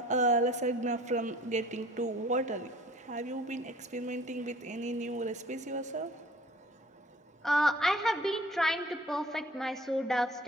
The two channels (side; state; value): both; normal; correlation 0.50